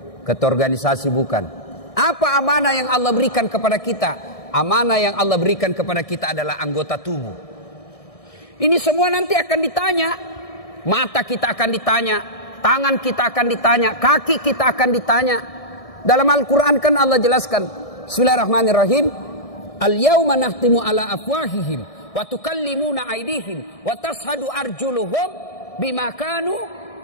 ketua organisasi bukan. Apa amanah yang Allah berikan kepada kita? Amanah yang Allah berikan kepada kita adalah anggota tubuh. Ini semua nanti akan ditanya. Mata kita akan ditanya, tangan kita akan ditanya, kaki kita akan ditanya. Dalam Al-Quran kan Allah jelaskan, Bismillahirrahmanirrahim, Al-yawma nahtimu ala afwahihim wa tukallimuna aydihim wa tashhadu arjuluhum bima kanu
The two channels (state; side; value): late; right; 1.6 ms